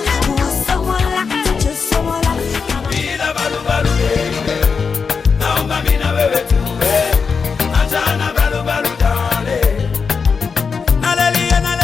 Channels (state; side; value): quieter; right; 5.5 dB